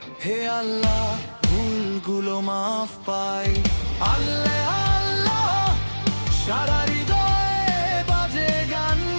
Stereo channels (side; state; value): both; inverted; correlation -1.00